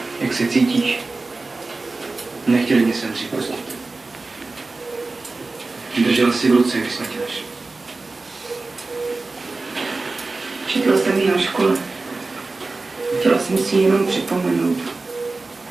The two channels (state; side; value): quieter; left; 3.5 dB